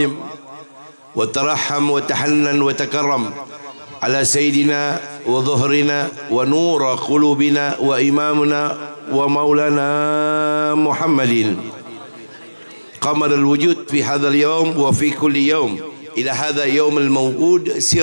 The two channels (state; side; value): inverted; both; correlation -1.00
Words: wa tarahham wa tahannan wa takarram ala sayyidina wa dhuhrina wa nura qulubina wa imamuna wa maulana Muhammadin qamar al-wujud fi hadha al-yawm wa fi kulli yawm ila hadha yawm al-maw'ud